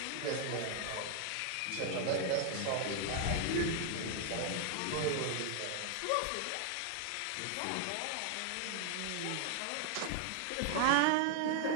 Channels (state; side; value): different; both; correlation 0.00